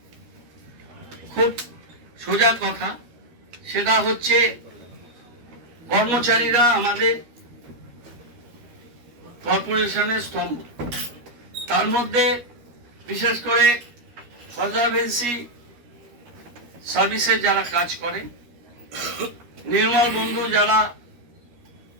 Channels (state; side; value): late; left; 13 ms